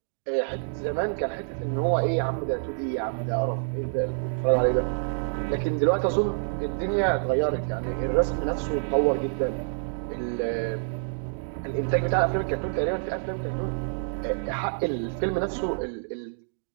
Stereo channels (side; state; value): left; silent; digital silence